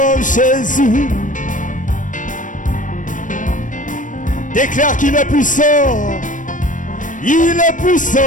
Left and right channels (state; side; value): late; right; 0.37 ms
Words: Jésus. Déclare qu'il est puissant. Il est puissant.